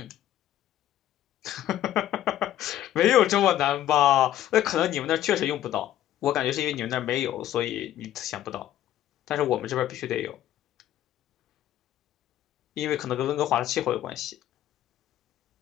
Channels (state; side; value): quieter; right; 12.5 dB